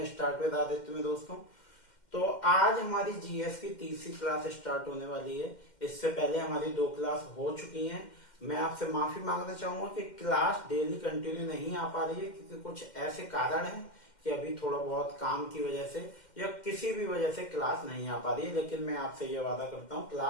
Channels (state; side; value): late; right; 2.1 ms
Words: स्टार्ट विद आदित्य में। दोस्तों, तो आज हमारी जीएस की तीसरी क्लास स्टार्ट होने वाली है। इससे पहले हमारी 2 क्लास हो चुकी हैं। मैं आपसे माफी मांगना चाहूंगा कि क्लास डेली कंटिन्यू नहीं आ पा रही है, क्योंकि कुछ ऐसे कारण हैं कि अभी थोड़ा बहुत काम की वजह से या किसी भी वजह से क्लास नहीं आ पा रही है। लेकिन मैं आपसे ये वादा करता हूँ,